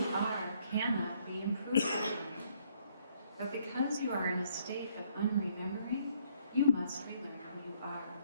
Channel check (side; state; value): both; inverted; correlation -0.67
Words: are cannot be improved upon. But because you are in a state of unremembering, you must relearn who you are.